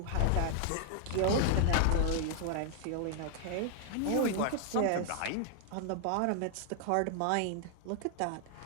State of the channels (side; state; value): both; different; correlation 0.00